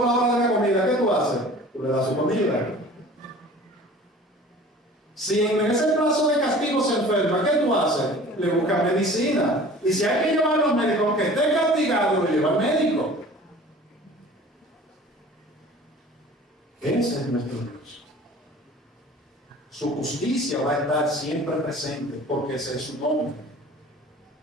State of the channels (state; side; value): normal; both; correlation 0.44